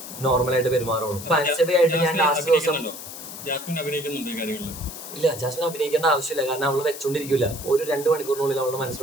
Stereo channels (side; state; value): left; noise; hiss, 11 dB below the sound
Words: നോർമലായിട്ട് പെരുമാറുള്ളൂ. ഇപ്പൊ അൻസബയായിട്ട് ഞാൻ ലാസ്റ്റ് ദിവസം ഇല്ല, ജാസ്മിൻ അഭിനയിക്കേണ്ട ആവശ്യമില്ല. കാരണം അവള് വെച്ചോണ്ടിരിക്കില്ല. ഒരു 2 മണിക്കൂറിനുള്ളിൽ അവളുടെ